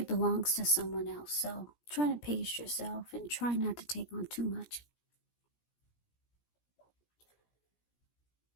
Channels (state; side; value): late; right; 17 ms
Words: belongs to someone else. So try to pace yourself and try not to take on too much.